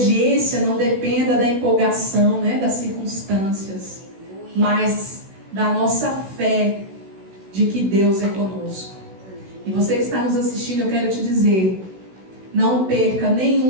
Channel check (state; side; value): late; left; 16 ms